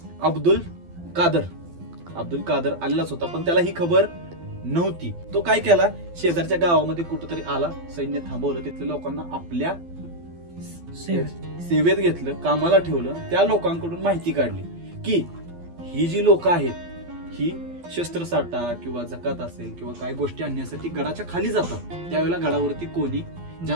अब्दुल कादर आलेलाच होता, पण त्याला ही खबर नव्हती. तो काय केला, शेजारच्या गावामध्ये कुठेतरी आला, सैन्य थांबवलं, तिथल्या लोकांना आपल्या सेवेत घेतलं, कामाला ठेवलं. त्या लोकांकडून माहिती काढली की ही जी लोक आहेत ही शस्त्रसाठा किंवा जकात असेल किंवा काय गोष्टी आणण्यासाठी गडाच्या खाली जातात. त्यावेळेला गडावरती कोणी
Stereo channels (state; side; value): late; left; 12 ms